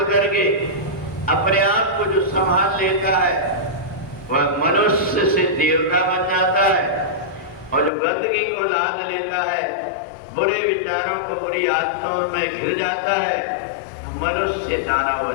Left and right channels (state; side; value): drops out; right; at 7.9 s